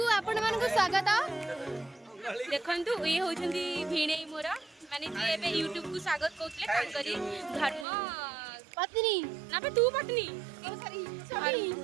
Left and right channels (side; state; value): left; drops out; at 7.9 s